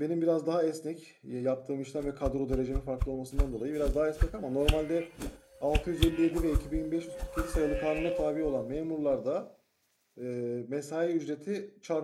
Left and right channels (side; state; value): both; identical; correlation 1.00